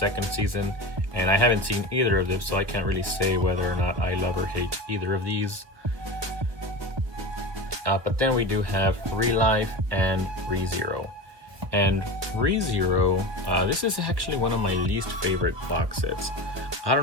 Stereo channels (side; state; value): left; late; 1.1 ms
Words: season. And I haven't seen either of them, so I can't really say whether or not I love or hate either of these. But then we do have Relife and ReZero. And ReZero, this is actually one of my least favorite box sets. I